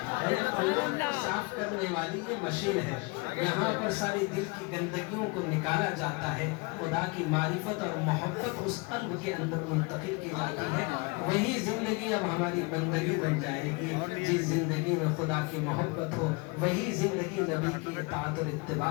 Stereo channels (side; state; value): right; quieter; 27.7 dB